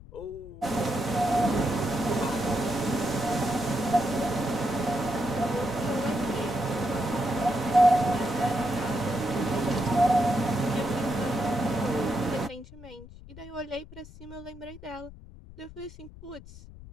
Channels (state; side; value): noise; left; rumble, 17 dB below the sound